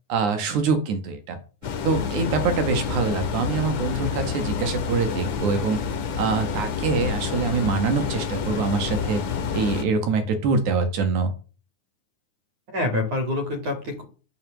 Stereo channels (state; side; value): late; left; 9.7 ms